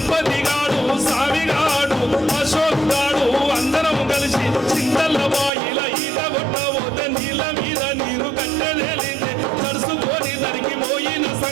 సావిగాడు అశోక్ గాడు అందరం కలిసి చింతల్ల బాయిల ఈత కొట్టబోతే నీళ్ళ మీద నీరు కట్టెలేలింది తడుసుకొని దరికి పోయిన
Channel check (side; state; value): left; drops out; at 5.5 s